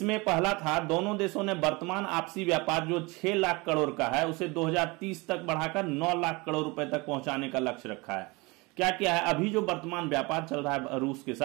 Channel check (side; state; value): left; quieter; 25.4 dB